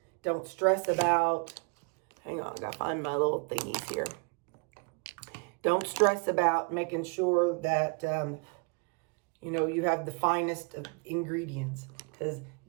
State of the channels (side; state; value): left; quieter; 32.9 dB